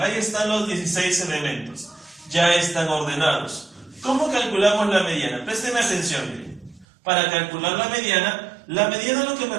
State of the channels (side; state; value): left; drops out; at 6.9 s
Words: están los 16 elementos. Ya están ordenados. ¿Cómo calculamos la mediana? Presten atención, miren. Para calcular la mediana lo que me